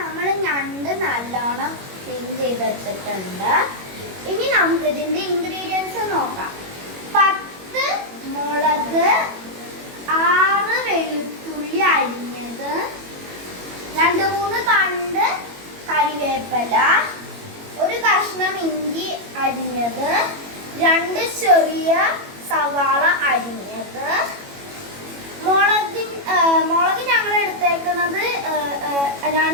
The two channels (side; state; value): left; late; 21 ms